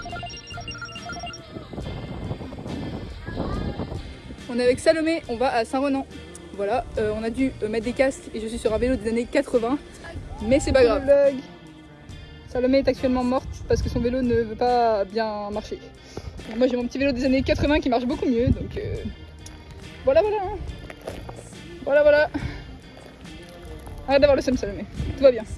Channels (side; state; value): both; identical; correlation 1.00